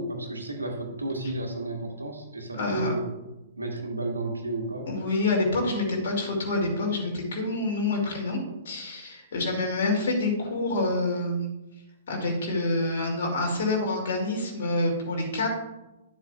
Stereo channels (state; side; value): inverted; both; correlation -0.47